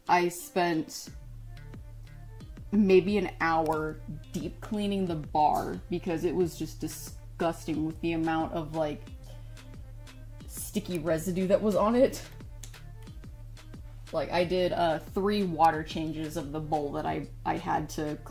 I spent maybe an hour deep cleaning the bar because it was just disgusting with the amount of like sticky residue that was on it. Like, I did 3 water changes of the bowl that I had to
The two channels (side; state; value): both; identical; correlation 1.00